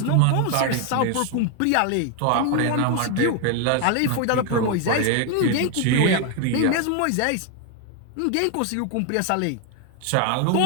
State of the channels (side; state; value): both; different; correlation 0.01